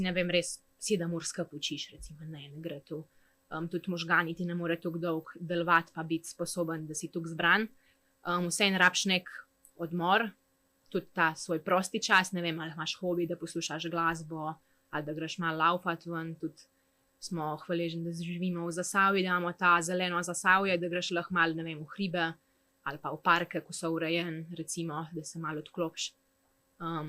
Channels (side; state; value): both; identical; correlation 1.00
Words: ne vem, res 7 ur skupaj učiš, recimo, ne gre to. Tudi možgani ti ne more tako dolg delovati, pa biti sposoben, da si tako zbran. Vseeno rabiš nek odmor, tudi ta svoj prosti čas, ne vem, ali imaš hobi, da poslušaš glasbo, ali da greš malo laufat ven, tudi smo hvaležni, da živimo v Zasavju, da imamo ta zeleno Zasavje, da greš lahko malo, ne vem, v hribe ali pa v parke, ko so urejeni, recimo, da se malo odklopiš.